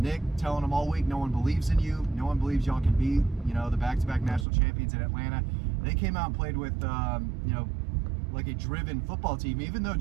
telling them all week, no one believes in you. No one believes y'all can beat, the back-to-back national champions in Atlanta. They came out and played with, like a driven football team. Even though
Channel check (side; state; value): left; drops out; at 4.5 s